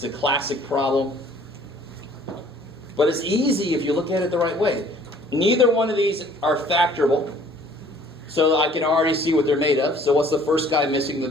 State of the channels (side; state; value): both; normal; correlation 0.55